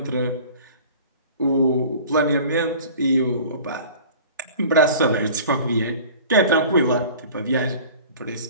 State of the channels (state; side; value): inverted; both; correlation -0.43